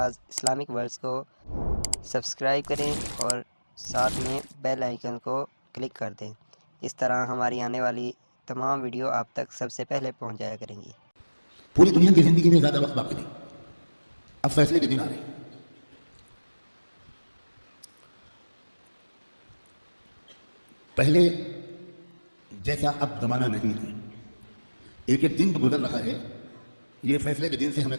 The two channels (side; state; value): both; inverted; correlation -1.00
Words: اسلامک ورلڈز کو سبسکرائب کریں اور ساتھ میں بیل آئیکن کو کلک کر دیں۔ اس طرح ہماری آنے والی تمام ویڈیو آپ تک سب سے پہلے پہنچ جایا کریں گی۔ پوری دنیا کی زندگی میں زیادہ وقت باقی نہیں، اب فیصلے کے دن آ رہے ہیں۔ پہلے جیسا اب زمانہ نہیں ہے، ایک ایک دن گزر رہا ہے، یہ فیصلے کے دن سے ہمیں